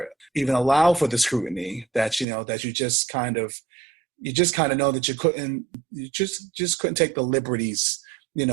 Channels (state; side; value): drops out; left; at 2.2 s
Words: the scrutiny that you just kind of know that you just couldn't take the liberties,